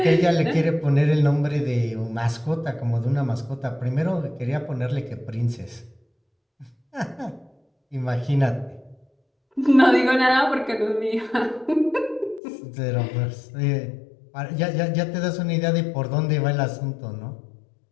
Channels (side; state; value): right; drops out; at 12.4 s